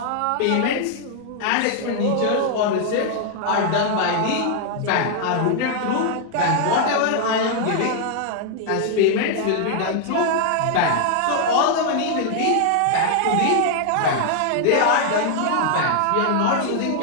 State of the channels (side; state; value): both; different; correlation 0.00